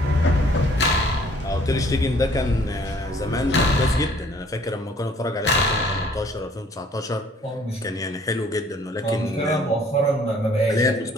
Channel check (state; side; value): normal; both; correlation 0.58